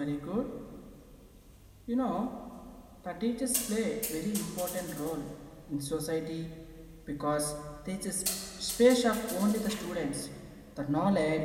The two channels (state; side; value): identical; both; correlation 1.00